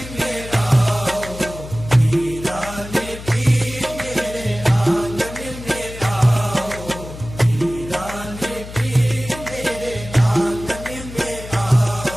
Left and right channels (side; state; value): left; noise; hum, 13 dB below the sound